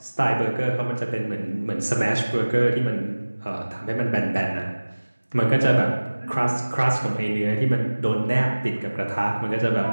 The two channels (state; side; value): inverted; both; correlation -1.00